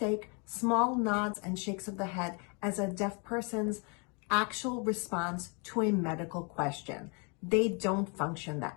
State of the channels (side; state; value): right; quieter; 32.7 dB